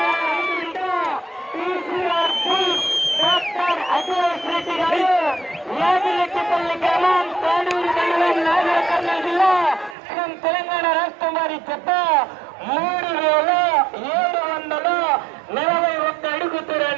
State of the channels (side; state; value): left; drops out; at 10.0 s